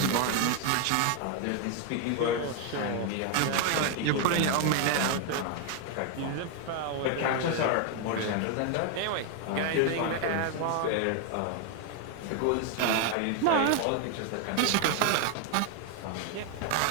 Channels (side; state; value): both; different; correlation 0.01